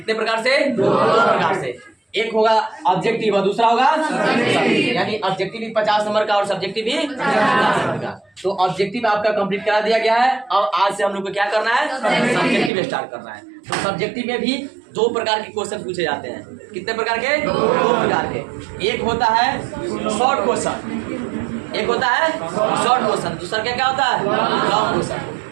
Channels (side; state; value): left; drops out; at 12.7 s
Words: प्रकार से? 2 प्रकार से। एक होगा ऑब्जेक्टिव और दूसरा होगा यानी ऑब्जेक्टिव भी 50 नंबर का और सब्जेक्टिव भी 50 नंबर का। तो ऑब्जेक्टिव आपका कंप्लीट करा दिया गया है और आज से हम लोग को क्या करना है? सब्जेक्टिव स्टार्ट करना है। तो सब्जेक्टिव में भी 2 प्रकार के क्वेश्चन पूछे जाते हैं। कितने प्रकार के? 2 प्रकार के। एक होता है शॉर्ट क्वेश्चन, एक होता है शॉर्ट क्वेश्चन, दूसरा क्या होता है? Long question.